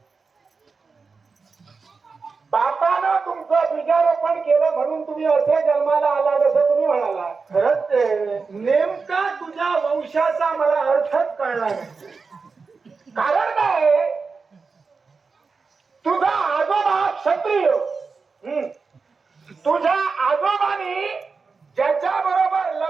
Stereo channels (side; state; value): left; quieter; 4.7 dB